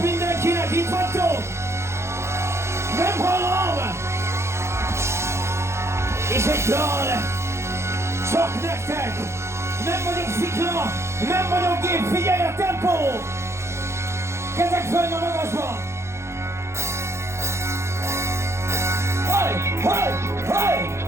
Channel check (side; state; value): left; late; 0.13 ms